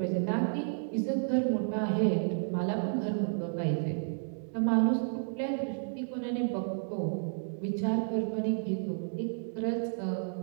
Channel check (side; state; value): left; silent; digital silence